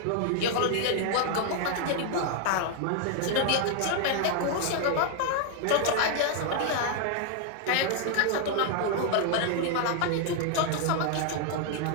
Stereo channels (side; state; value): both; different; correlation 0.00